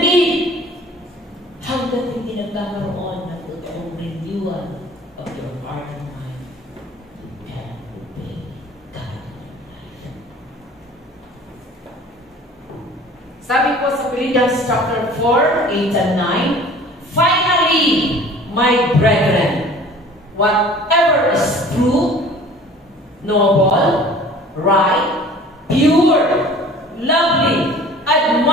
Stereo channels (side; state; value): both; normal; correlation 0.47